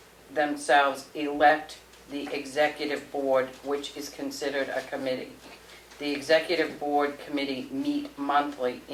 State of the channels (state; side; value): identical; both; correlation 1.00